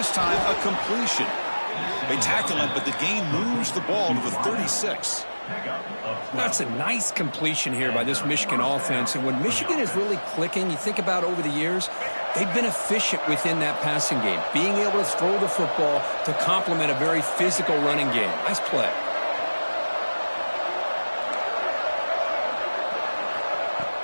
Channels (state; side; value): inverted; both; correlation -1.00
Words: time a completion. They tackle him, but the gain moves the ball to the 36. That's a nice completion here by this Michigan offense. And when Michigan is really clicking, you think about over the years, they've been efficient within that passing game, being able to throw the football to complement a very physical running game. Nice play.